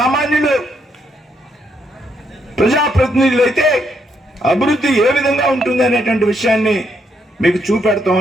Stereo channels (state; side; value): normal; both; correlation 0.76